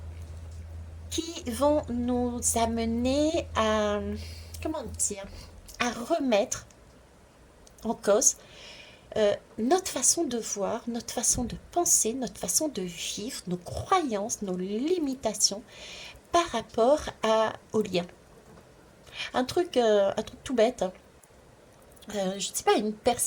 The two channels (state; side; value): identical; both; correlation 1.00